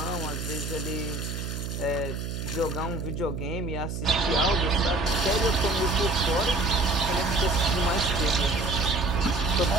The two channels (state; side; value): noise; right; hum, 5 dB below the sound